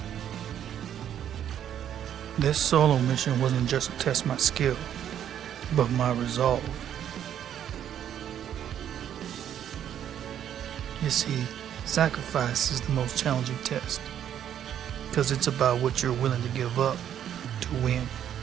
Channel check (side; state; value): left; quieter; 10.0 dB